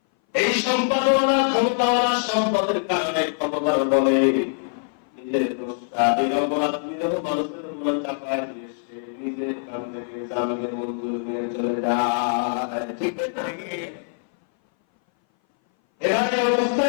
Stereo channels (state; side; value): silent; right; 59 dB below the other